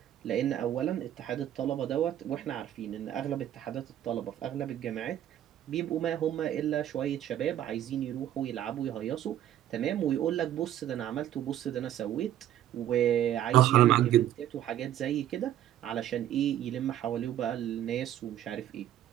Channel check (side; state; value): left; quieter; 11.7 dB